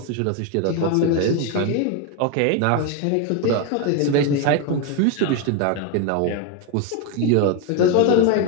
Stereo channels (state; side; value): different; both; correlation 0.02